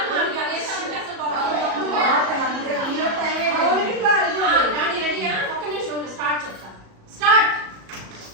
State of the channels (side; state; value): left; late; 37 ms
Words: స్టార్ట్ చెప్తా. స్టార్ట్.